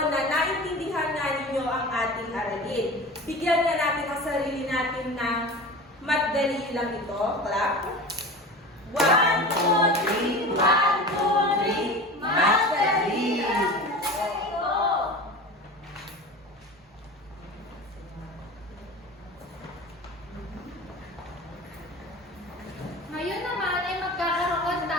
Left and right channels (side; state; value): both; normal; correlation 0.33